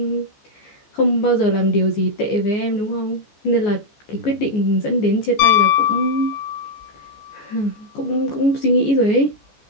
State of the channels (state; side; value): late; right; 14 ms